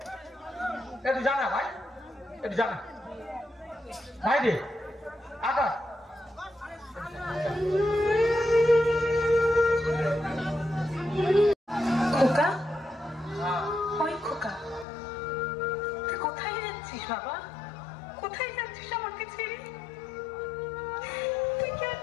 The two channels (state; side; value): drops out; right; at 14.9 s